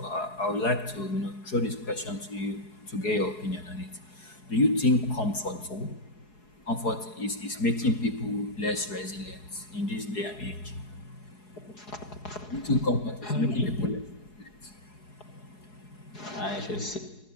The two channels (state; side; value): late; right; 4.7 ms